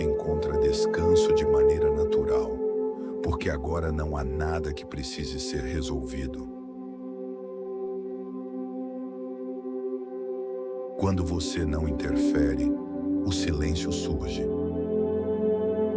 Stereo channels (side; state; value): both; identical; correlation 1.00